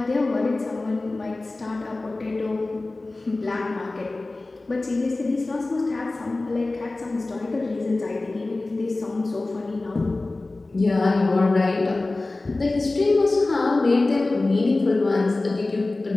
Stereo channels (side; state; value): right; quieter; 3.1 dB